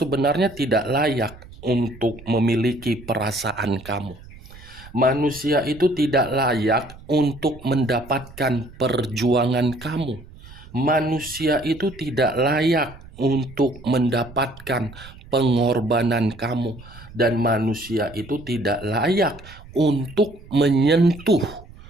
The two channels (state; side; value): noise; right; rumble, 19 dB below the sound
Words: tidak layak untuk memiliki perasaan kamu. Manusia itu tidak layak untuk mendapatkan perjuangan kamu. Manusia itu tidak layak untuk mendapatkan pengorbanan kamu, dan manusia itu tidak layak untuk menyentuh